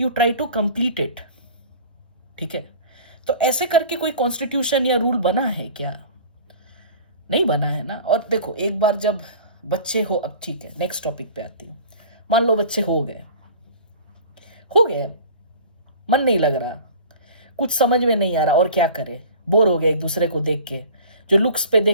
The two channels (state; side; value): inverted; both; correlation -0.42